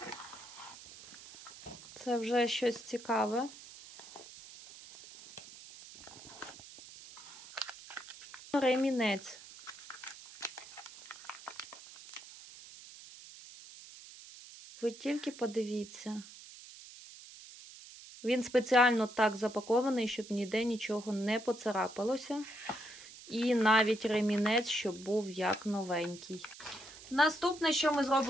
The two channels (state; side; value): noise; right; hiss, 17 dB below the sound